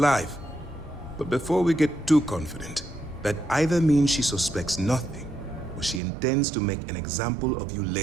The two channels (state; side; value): drops out; left; at 6.0 s